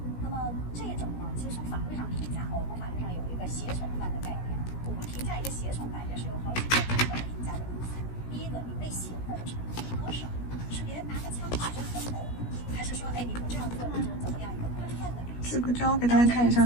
那么这种呢，其实从法律上评价，我们法律上有一个胁从犯的概念。我们评价一个胁从犯也是有好几个评价的因素。第一个，你被胁迫的程度多少？是别人拿个枪指着你的头，还是说，哎，你不这样做你就怎么样一个宽泛的？这个就要给大家看一下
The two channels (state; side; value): late; right; 17 ms